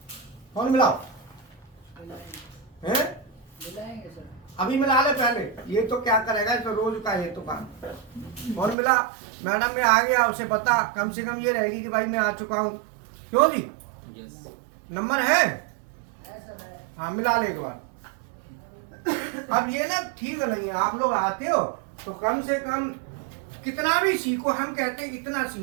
फोन मिलाओ, हैं मिलाएंगे सर। अभी मिला ले पहले, ये तो क्या करेगा, तो रोज का ये तो काम। फोन मिला, मैडम मैं आ गया, उसे बता, कम से कम ये रहेगी कि भाई मैं आ चुका हूँ। क्यों जी, यस नंबर है, हाँ मिला ले एक बार। अब ये ना ठीक नहीं है, आप लोग आते हो तो कम से कम कितना भी सीखो, हम कहते हैं इतना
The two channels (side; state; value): left; drops out; at 8.8 s